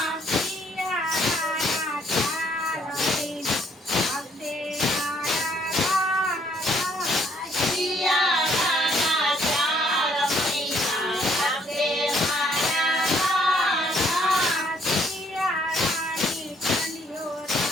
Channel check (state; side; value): normal; both; correlation 0.66